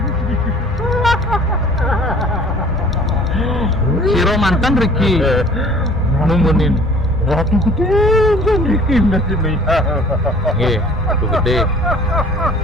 Siro mantan Riki numunin. Ratu gede kan Riki nasibnya. Nggih, ratu gede.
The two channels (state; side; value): normal; both; correlation 0.50